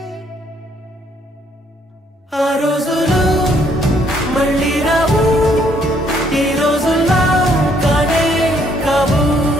ఆ రోజులు మళ్ళీ రావు ఈ రోజుల్లా కానే కావు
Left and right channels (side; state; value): both; normal; correlation 0.68